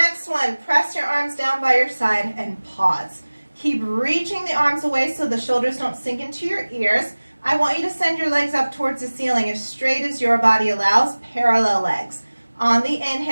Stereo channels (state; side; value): inverted; both; correlation -1.00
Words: one, press your arms down by your side and pause. Keep reaching the arms away so the shoulders don't sink into your ears. I want you to send your legs up towards the ceiling as straight as your body allows, parallel legs. On the